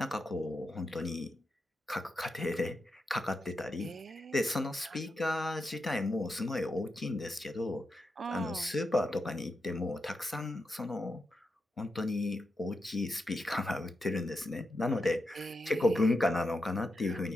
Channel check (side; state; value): both; normal; correlation 0.87